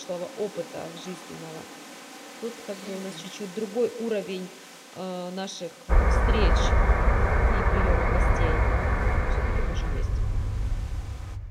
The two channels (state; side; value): identical; both; correlation 1.00